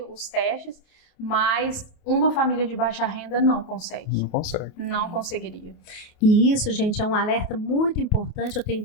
os testes, mas uma família de baixa renda não consegue. Não consegue. Não conseguiria. E isso, gente, é um alerta muito importante, eu tenho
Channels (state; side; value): late; right; 28 ms